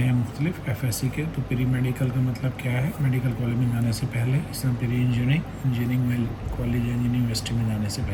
हैं मुख्तलिफ एफएससी के। तो प्री मेडिकल का मतलब क्या है, मेडिकल कॉलेज में जाने से पहले। इस तरह प्री इंजीनियरिंग में कॉलेज या यूनिवर्सिटी में जाने से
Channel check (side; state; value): both; identical; correlation 1.00